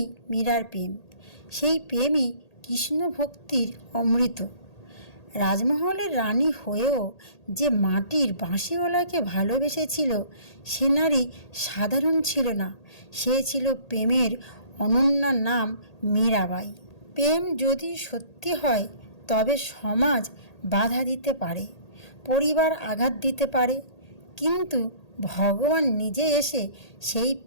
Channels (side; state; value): right; late; 1.8 ms